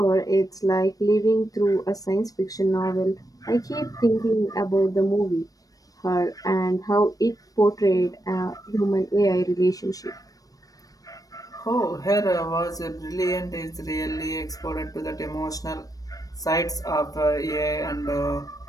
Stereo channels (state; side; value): late; right; 0.18 ms